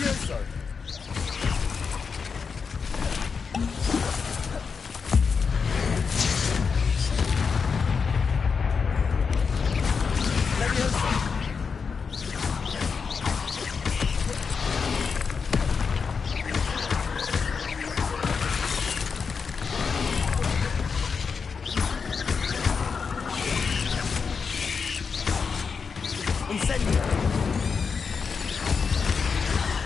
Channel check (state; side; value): quieter; right; 5.6 dB